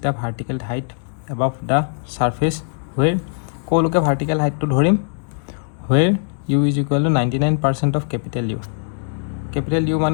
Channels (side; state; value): right; silent; digital silence